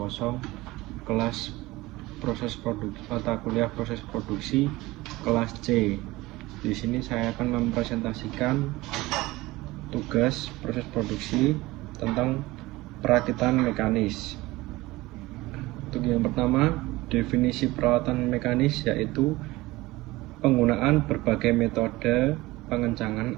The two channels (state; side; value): quieter; left; 19.7 dB